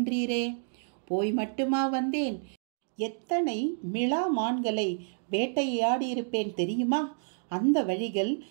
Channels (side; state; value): left; silent; digital silence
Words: போய் மட்டுமா வந்தேன்? எத்தனை மிளா மான்களை வேட்டையாடியிருப்பேன் தெரியுமா? அந்த வழிகள்